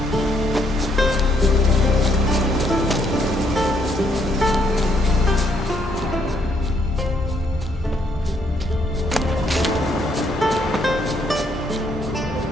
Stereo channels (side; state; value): both; normal; correlation 0.71